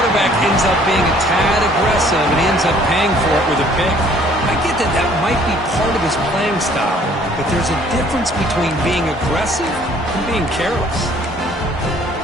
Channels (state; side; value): normal; both; correlation 0.58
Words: ends up being a tad aggressive and he ends up paying for it with a pick. I get that that might be part of his playing style, but there's a difference between being aggressive and being careless.